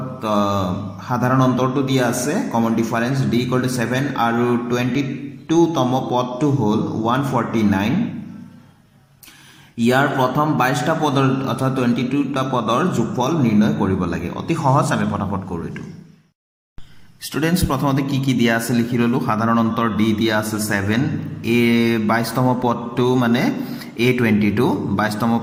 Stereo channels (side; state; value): both; identical; correlation 1.00